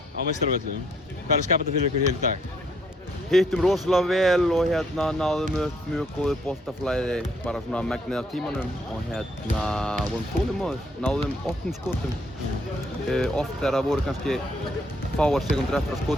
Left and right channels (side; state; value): both; normal; correlation 0.68